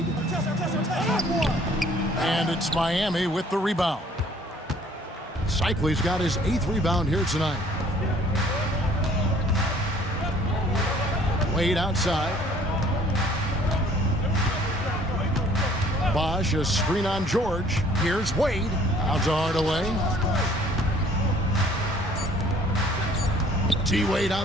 And it's Miami with the rebound. Cycley's got his 8th rebound here tonight. Wade outside. Bosch, a screen on George. Here's Wade. Out to Hardaway. T-Wade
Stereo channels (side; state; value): both; normal; correlation 0.56